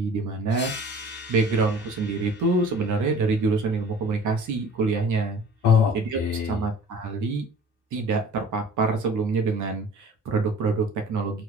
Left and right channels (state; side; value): normal; both; correlation 0.45